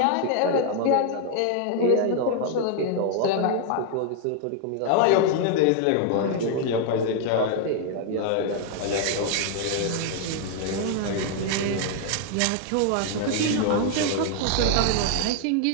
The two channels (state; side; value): different; both; correlation 0.00